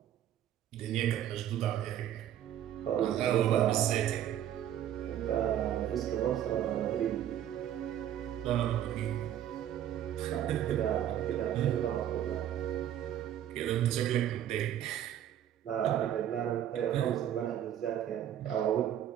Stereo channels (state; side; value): quieter; left; 10.9 dB